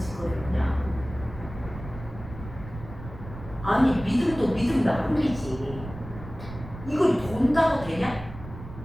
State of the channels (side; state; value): right; noise; rumble, 13 dB below the sound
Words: 그냥. 아니, 믿음도 믿음 나름이지. 이걸 돈다고 되냐?